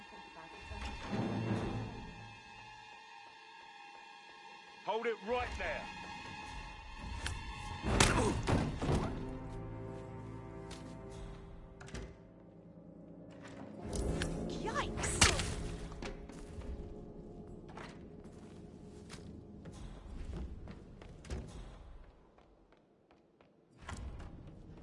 think about is Hold it right there. Yikes!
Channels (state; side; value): identical; both; correlation 1.00